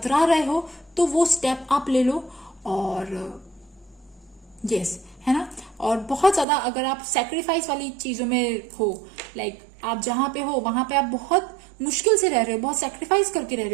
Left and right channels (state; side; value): drops out; left; at 6.5 s